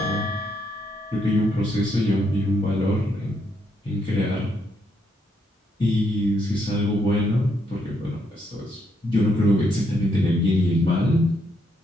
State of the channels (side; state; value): both; normal; correlation 0.75